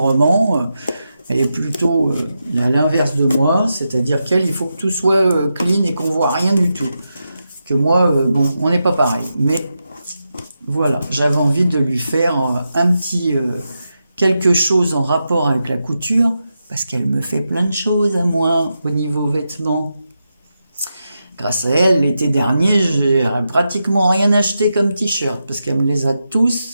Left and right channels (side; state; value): both; inverted; correlation -0.88